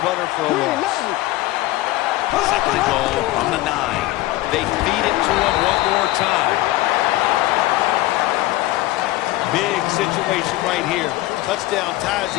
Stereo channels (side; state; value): right; quieter; 17.6 dB